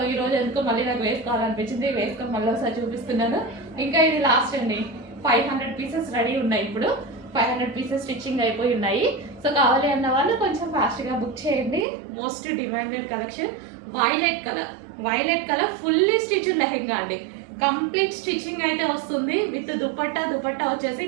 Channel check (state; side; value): drops out; left; at 11.9 s